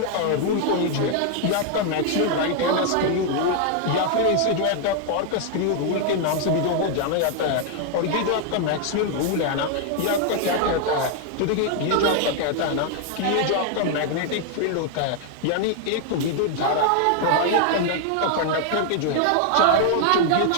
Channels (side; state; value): both; different; correlation 0.00